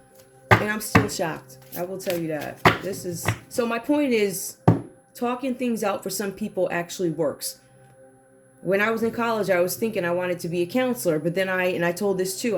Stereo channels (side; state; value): both; identical; correlation 1.00